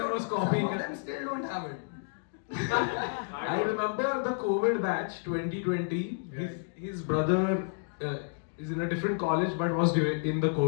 was copying. Some of them still don't have it. I remember the COVID batch 2020. His brother is in a different college but was in the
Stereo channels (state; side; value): silent; right; digital silence